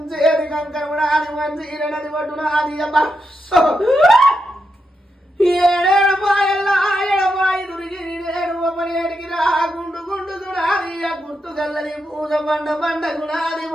కంకరమునాది మంచీరనది పట్టునాది ఏడేడు పాయల్లా ఎడపాయి దురిగి నేడు ఒకనేటికి రా గుండు దునాది గుర్తు గల్లది పూజ బండ గుణాది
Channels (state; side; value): normal; both; correlation 0.84